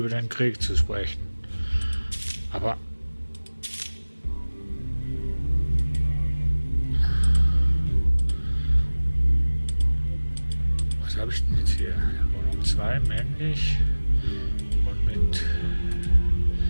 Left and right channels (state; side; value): inverted; both; correlation -1.00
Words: den Krieg zu sprechen. Aber was habe ich denn jetzt hier? Wohnung 2, männlich. Und mit